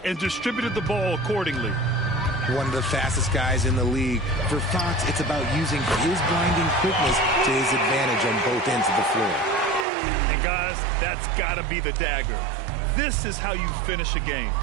and distributed the ball accordingly. One of the fastest guys in the league. For Fox, it's about using his blinding quickness to his advantage on both ends of the floor. And guys, that's gotta be the dagger. This is how you finish a game.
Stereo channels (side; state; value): left; drops out; at 9.9 s